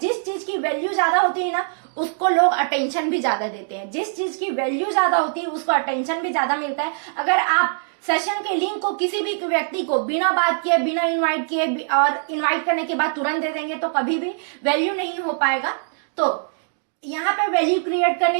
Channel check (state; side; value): silent; left; digital silence